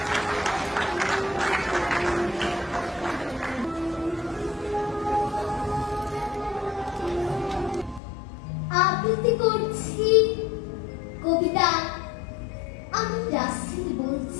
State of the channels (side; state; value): right; drops out; at 8.0 s